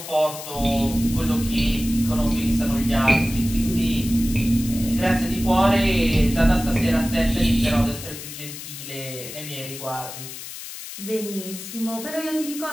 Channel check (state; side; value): noise; left; hiss, 11 dB below the sound